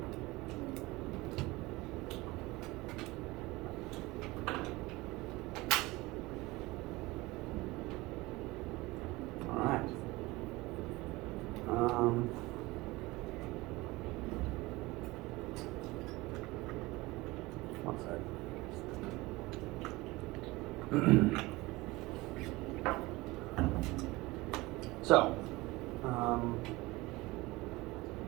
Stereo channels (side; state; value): left; quieter; 21.2 dB